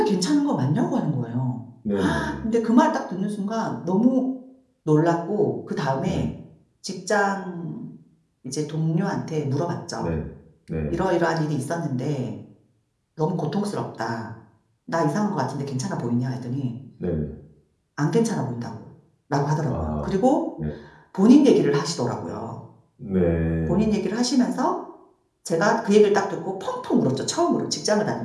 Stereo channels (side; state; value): both; identical; correlation 1.00